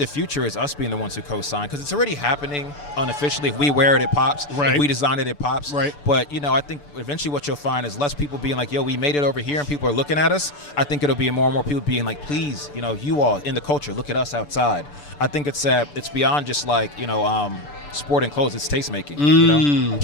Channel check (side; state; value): right; late; 6.9 ms